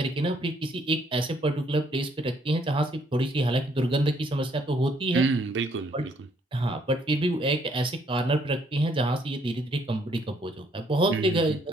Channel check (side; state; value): both; normal; correlation 0.67